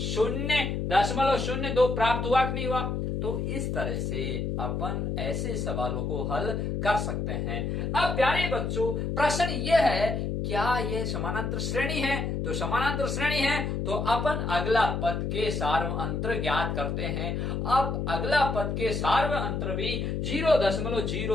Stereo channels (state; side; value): noise; left; hum, 1 dB below the sound